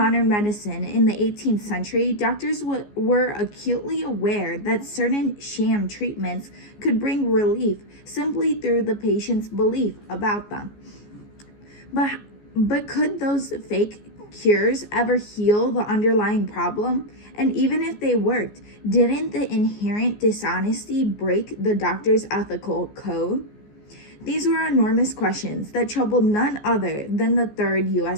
medicine in the 18th century, doctors were acutely aware that certain sham treatments could bring relief simply through the patient's belief about them. But could those fake cures ever heal the underlying problem? And even if they worked, didn't the inherent dishonesty break the doctor's ethical code? These were enormous questions that troubled none other than the third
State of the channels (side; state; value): right; late; 14 ms